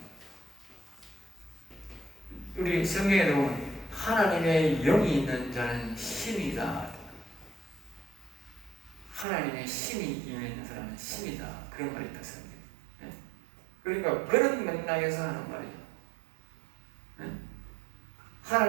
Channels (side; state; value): left; drops out; at 9.2 s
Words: 우리 성경에 보면 하나님의 영이 있는 자는 신이다. 하나님의 신이 임해 사람은 신이다. 그런 말이 있다. 성경에. 그러니까 그런 맥락에서 하는 말이죠.